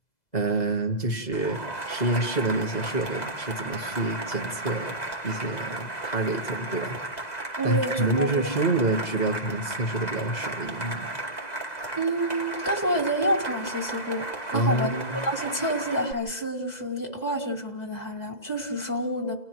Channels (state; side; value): late; right; 2.0 ms